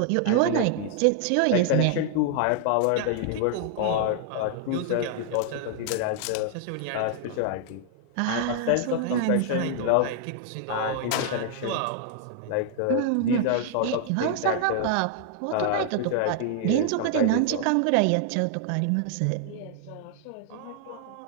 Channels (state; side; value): different; both; correlation 0.00